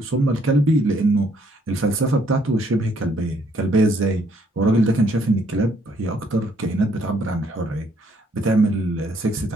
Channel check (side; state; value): both; normal; correlation 0.67